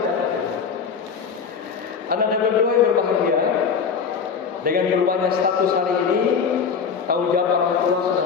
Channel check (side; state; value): right; quieter; 6.2 dB